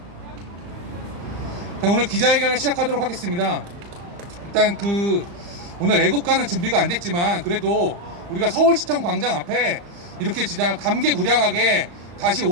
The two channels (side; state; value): left; late; 35 ms